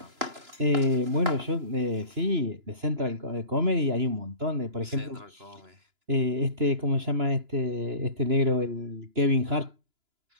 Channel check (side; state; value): left; late; 2.9 ms